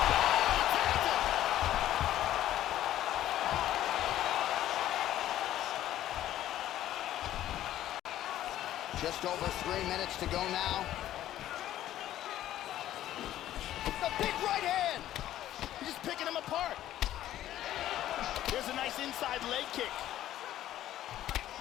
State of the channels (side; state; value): right; quieter; 12.9 dB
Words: Just over 3 minutes to go now. The big right hand! He's just picking him apart. There's a nice inside leg kick.